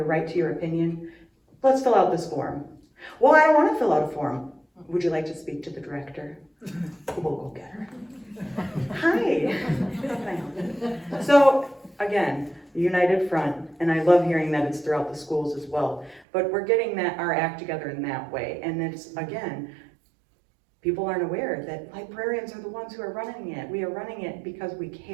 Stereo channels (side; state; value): left; drops out; at 16.2 s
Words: right to your opinion. Let's fill out this form. Well, I don't wanna fill out a form. Would you like to speak to the director? We'll go get her. Hi. How can I help you? So, again, united front, and I love hearing that it's throughout the schools as well. But we're getting our act together in that way. And it's, again, people aren't aware that librarians are the ones who are running it. We are running it because we